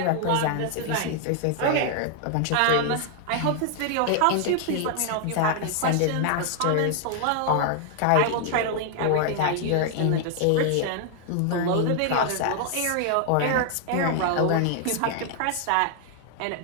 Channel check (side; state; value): both; different; correlation 0.00